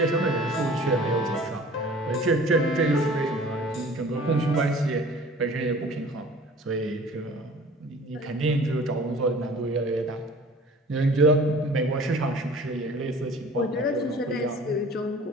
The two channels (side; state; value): both; normal; correlation 0.47